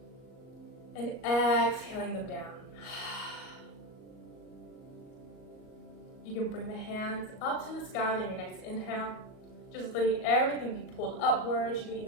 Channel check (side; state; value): right; late; 38 ms